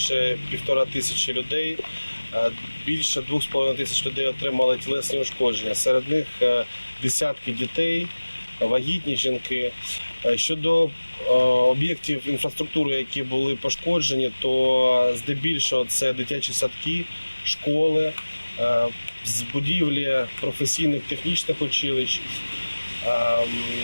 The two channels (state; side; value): inverted; both; correlation -1.00